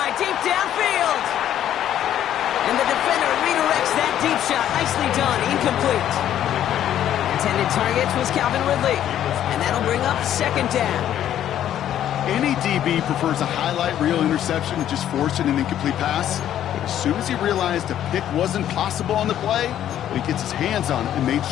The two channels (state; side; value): quieter; right; 11.1 dB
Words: deep downfield. And the defender redirects that deep shot. Nicely done. Incomplete. Intended target was Calvin Ridley. And that'll bring up 2nd down. Any DB prefers a highlight reel interception to just forcing an incomplete pass. But as soon as he realized a pick wasn't possible on the play, he gets his hands on it and made